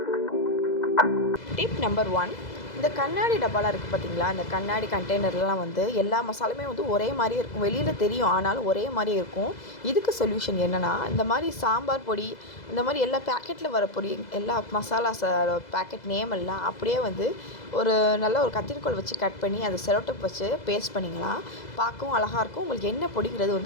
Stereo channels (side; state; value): right; late; 2.0 ms